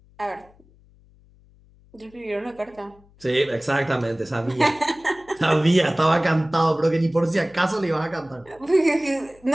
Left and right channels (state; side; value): noise; left; hum, 28 dB below the sound